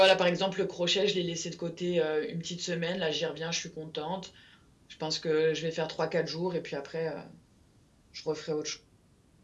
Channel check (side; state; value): both; identical; correlation 1.00